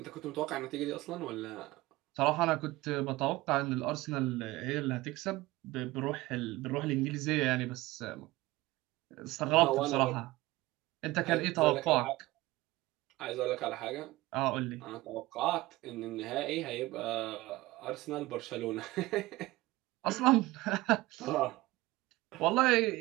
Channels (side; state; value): left; quieter; 19.4 dB